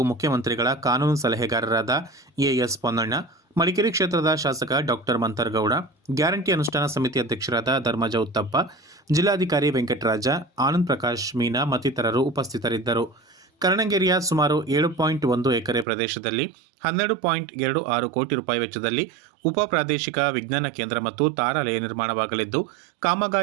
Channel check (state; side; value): drops out; left; at 15.9 s